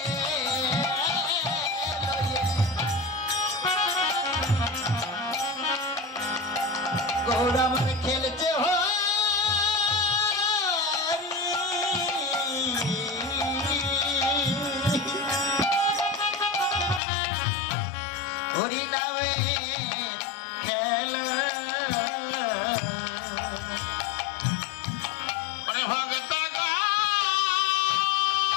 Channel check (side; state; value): right; drops out; at 17.0 s